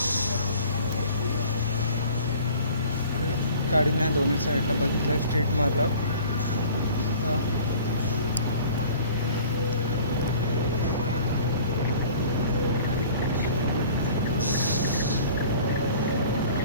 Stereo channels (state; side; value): inverted; both; correlation -0.47